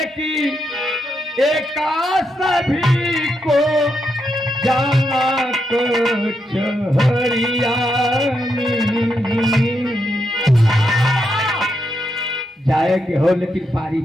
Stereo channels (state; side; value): normal; both; correlation 0.82